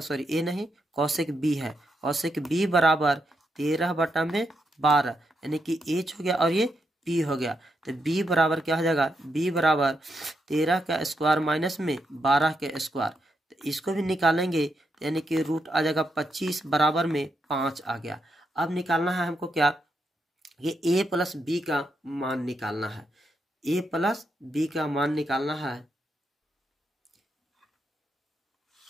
ए नहीं, कॉसेक बी है, कॉसेक बी बराबर 13 बटा में 12, यानी कि एच हो गया और ये पी हो गया। तो बी बराबर क्या हो जाएगा, बी बराबर 13 का स्क्वायर माइनस में 12 के स्क्वायर, तो इसको भी निकालेंगे यानी कि रूट आ जाएगा 25 बराबर में 5 आ गया। अब निकालना है हमको क्या, ये a प्लस बी का मान निकालना है, a प्लस बी का मान निकालना है।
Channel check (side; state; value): both; normal; correlation 0.81